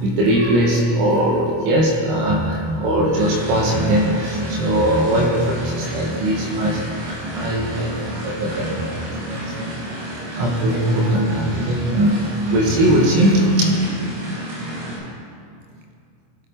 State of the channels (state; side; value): late; left; 25 ms